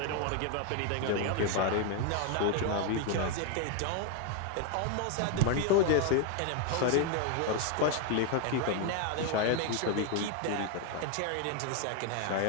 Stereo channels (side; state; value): both; different; correlation 0.01